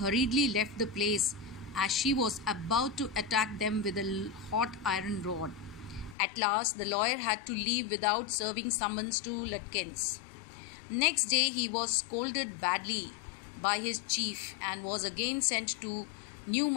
left the place as she was about to attack them with a hot iron rod. At last the lawyer had to leave without serving summons to Lutkins. Next day he was scolded badly by his chief and was again sent to New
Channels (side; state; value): right; drops out; at 6.2 s